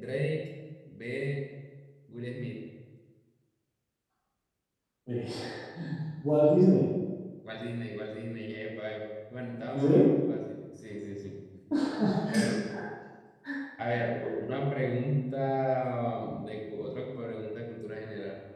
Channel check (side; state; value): both; identical; correlation 1.00